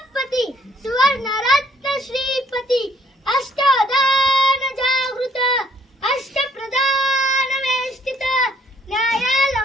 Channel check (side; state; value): both; normal; correlation 0.63